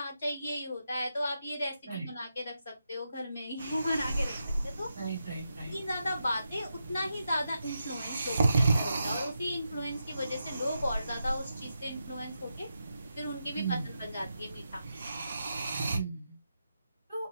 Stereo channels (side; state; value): both; inverted; correlation -0.86